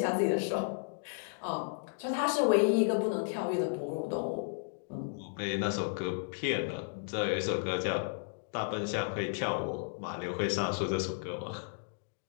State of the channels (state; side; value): silent; right; digital silence